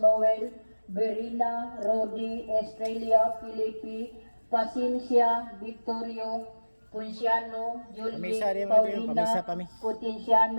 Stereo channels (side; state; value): both; inverted; correlation -1.00